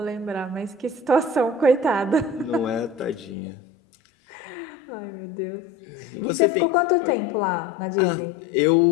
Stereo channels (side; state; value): right; drops out; at 3.4 s